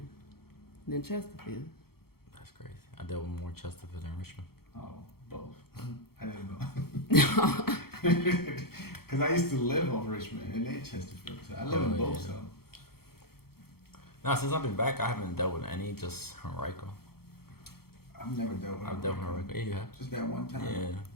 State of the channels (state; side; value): late; right; 0.95 ms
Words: than Chesterfield. That's crazy. I dealt with more Chesterfield than Richmond. Oh, both. I didn't know. Because I used to live off Richmond and then Chesterfield. So I live in both, so. No, since I've been back, I haven't dealt with any, just Henrico. I've never dealt with I've dealt with Henrico. Yeah, you have. Just that one time?